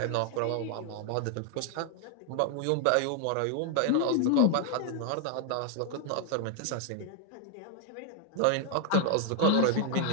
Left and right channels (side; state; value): both; different; correlation 0.00